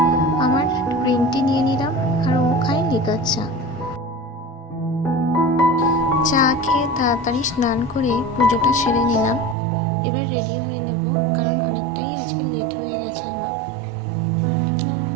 আমার গ্রিন টি নিয়ে নিলাম আর ও খায় লিকার চা। চা খেয়ে তাড়াতাড়ি স্নান করে পুজোটা সেরে নিলাম। এবার রেডি হয়ে নেব, কারণ অনেকটাই আজকে লেট হয়ে গেছে আমার।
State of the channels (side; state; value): left; drops out; at 9.6 s